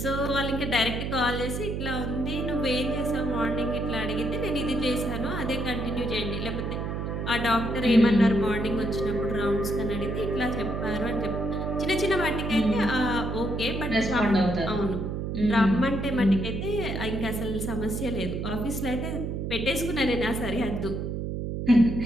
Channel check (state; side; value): noise; right; hum, 3 dB below the sound